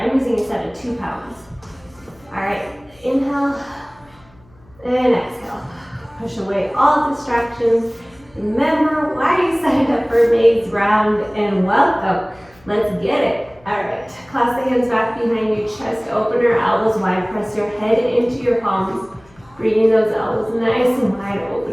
a set of 2 pounds. All right, inhale and exhale. Push away all distractions. Remember why you signed up for May's round, and welcome. Let's get it. All right, clasp the hands back behind you, chest opener, elbows wide. Press your head into your palms, bringing those elbows nice and wide,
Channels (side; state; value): left; noise; hum, 29 dB below the sound